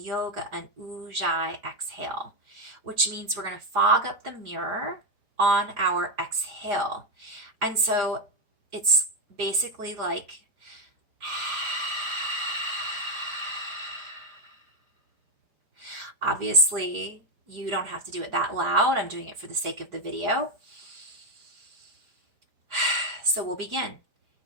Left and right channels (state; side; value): late; left; 4.9 ms